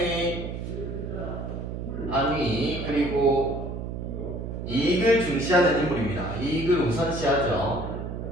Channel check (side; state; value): right; noise; hum, 6 dB below the sound